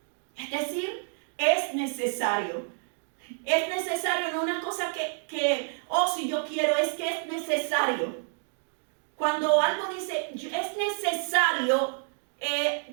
Es decir, es necesario. Es necesario, no una cosa si yo quiero, es que es necesario. Cuando algo dice, es necesario,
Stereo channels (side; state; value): left; silent; 59 dB below the other